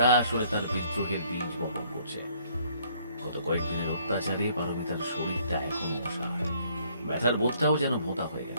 আসলে তার বিদ্রোহের বীজ বপন করছে। গত কয়েকদিনের অত্যাচারে পারমিতার শরীরটা এখনো অসহায়। ব্যথার বোধটাও যেন ভোঁতা হয়ে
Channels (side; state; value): both; inverted; correlation -0.63